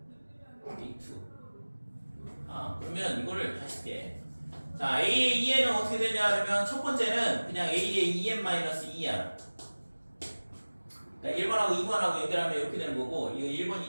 그러면 이거를 다시 할게. 자, A의 2n은 어떻게 되냐 그러면 첫 번째는 그냥 A의 2n-2야. 그러니까 1번하고 2번하고 연결하면 이렇게 되는 거고, 이거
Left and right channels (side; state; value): both; inverted; correlation -1.00